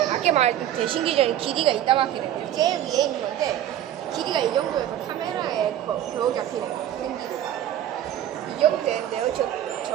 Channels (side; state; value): left; quieter; 11.5 dB